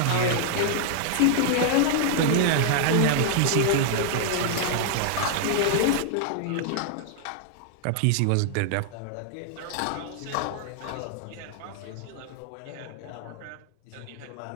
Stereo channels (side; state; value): both; different; correlation -0.01